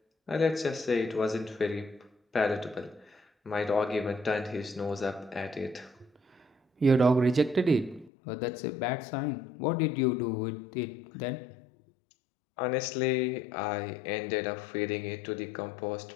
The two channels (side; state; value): right; drops out; at 8.1 s